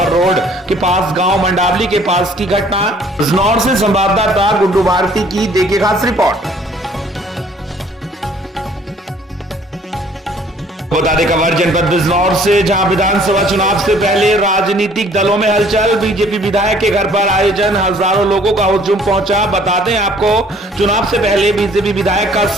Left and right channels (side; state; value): both; normal; correlation 0.57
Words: रोड के पास गाँव मंडावली के पास की घटना। बिजनौर से संवाददाता गुड्डू भारती की देखिए खास रिपोर्ट। बता दें खबर जनपद बिजनौर से, जहां विधानसभा चुनाव से पहले राजनीतिक दलों में हलचल। बीजेपी विधायक के घर पर आयोजन, हजारों लोगों का हुजूम पहुंचा। बता दें आपको, चुनाव से पहले बीजेपी विधायक का